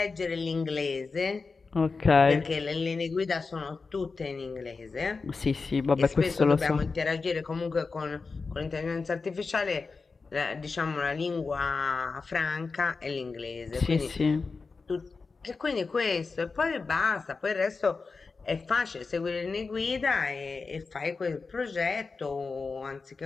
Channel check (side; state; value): right; quieter; 4.4 dB